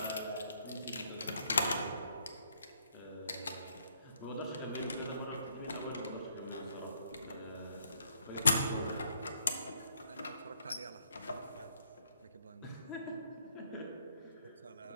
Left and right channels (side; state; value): both; inverted; correlation -0.69